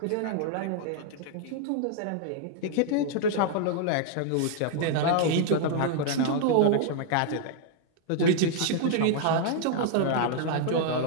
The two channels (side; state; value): both; different; correlation 0.00